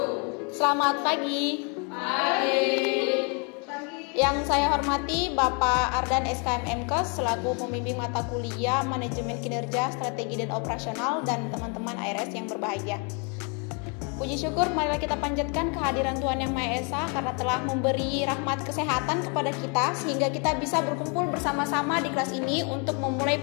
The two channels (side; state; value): right; quieter; 35.6 dB